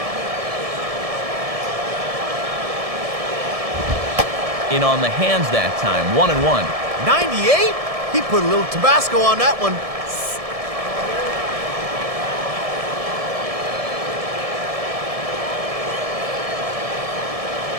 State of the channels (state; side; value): late; left; 1.7 ms